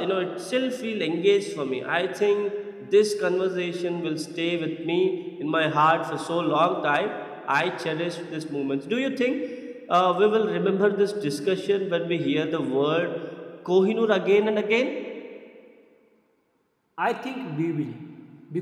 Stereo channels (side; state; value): both; identical; correlation 1.00